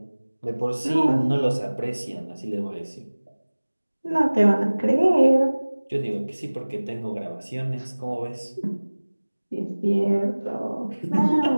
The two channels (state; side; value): inverted; both; correlation -1.00